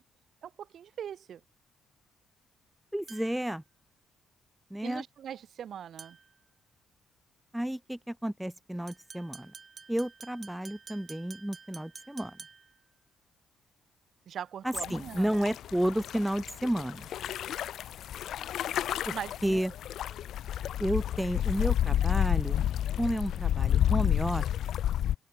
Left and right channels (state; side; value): quieter; right; 3.6 dB